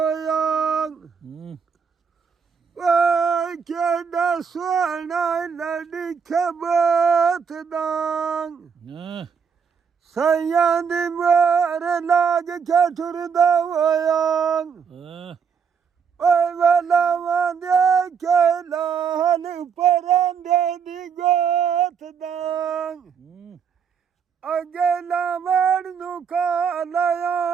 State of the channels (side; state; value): left; quieter; 6.5 dB